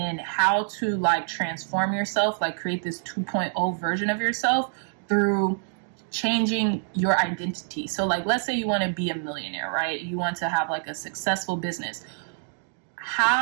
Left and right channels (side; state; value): left; silent; digital silence